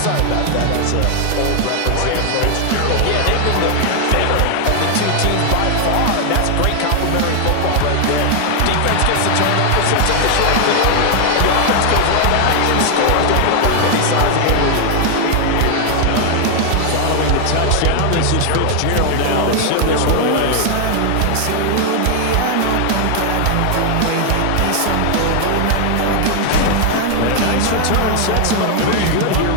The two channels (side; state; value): both; different; correlation 0.00